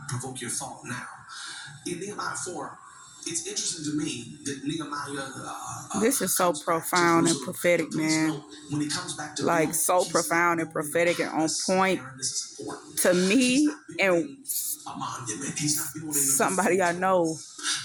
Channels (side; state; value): both; identical; correlation 1.00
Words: provoke your thought now. In Nehemiah 4, it's interesting to me that Nehemiah. This is so profound and prophetic, man. When he comes back to like so profound and prophetic and on point to me and somebody I know